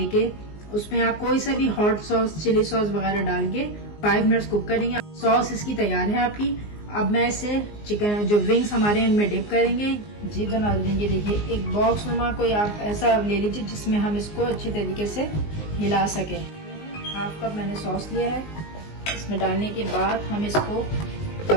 उसमें आप कोई सा भी हॉट सॉस, चिली सॉस वगैरह डाल के 5 मिनट्स कुक करेंगे। सॉस इसकी तैयार है आपकी। अब मैं इसे चिकन जो विंग्स हमारे इनमें डिप करेंगे। जी तो नाज़रीन ये देखिए एक बॉक्स नुमा कोई आप ऐसा ले लीजिए जिसमें हम इसको अच्छी तरीके से हिला सके। 1/2 कप मैंने सॉस लिया है। इसमें डालने के बाद हम इसको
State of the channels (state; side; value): late; right; 19 ms